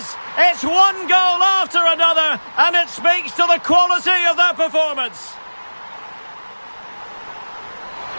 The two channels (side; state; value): both; inverted; correlation -1.00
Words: It's one goal after another, and it speaks to the quality of their performance.